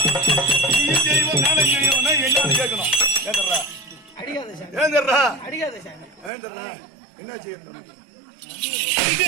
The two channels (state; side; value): drops out; left; at 6.3 s